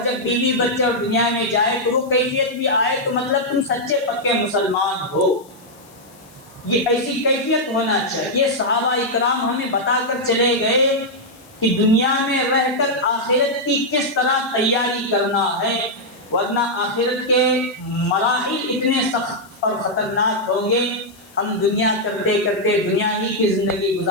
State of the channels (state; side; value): noise; left; hiss, 26 dB below the sound